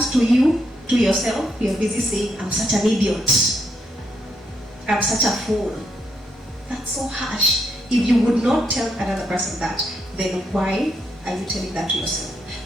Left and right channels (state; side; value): normal; both; correlation 0.77